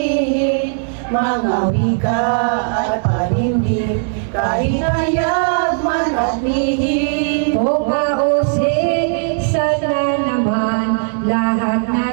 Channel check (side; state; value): left; silent; digital silence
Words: Mga wika at panimdim, kahit hayag man at lihim. Kung mausik, sana naman lahat